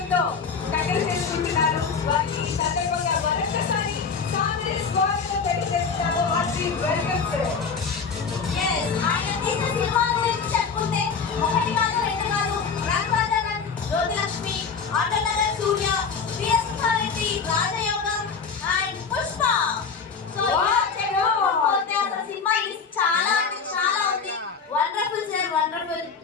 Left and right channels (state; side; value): quieter; right; 5.6 dB